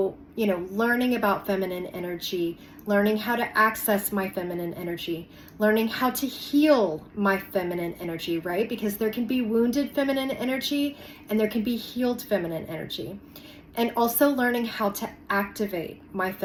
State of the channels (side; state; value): both; identical; correlation 1.00